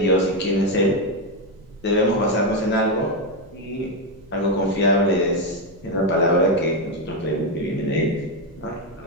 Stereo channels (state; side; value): noise; right; rumble, 25 dB below the sound